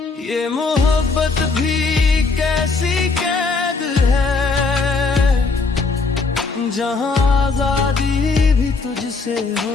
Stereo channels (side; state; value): right; quieter; 4.2 dB